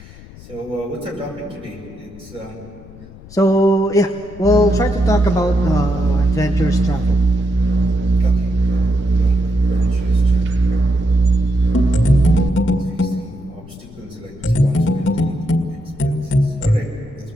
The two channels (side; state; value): left; noise; rumble, 20 dB below the sound